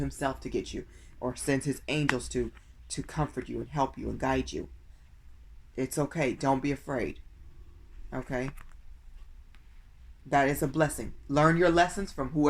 to get you. Or sends his angels to comfort you and help you and guide you. It's okay. Don't be afraid. Okay? That is a blessing. Learn your lessons from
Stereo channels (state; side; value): identical; both; correlation 1.00